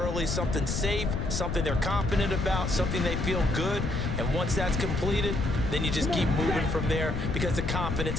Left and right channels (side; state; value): left; noise; rumble, 1 dB below the sound